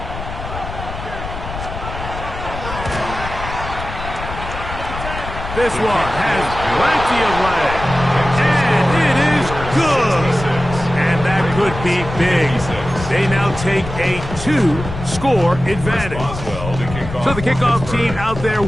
This one has plenty of leg. And it is good. And that could be big. They now take a 2-score advantage. So the kickoff team out there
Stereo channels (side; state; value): left; noise; rumble, 9 dB below the sound